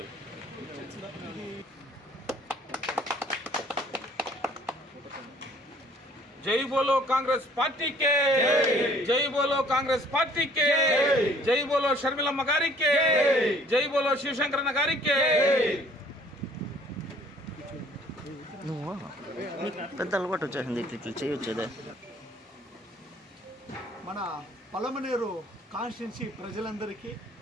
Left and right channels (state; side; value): normal; both; correlation 0.57